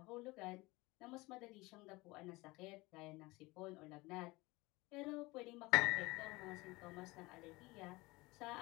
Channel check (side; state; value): right; quieter; 22.4 dB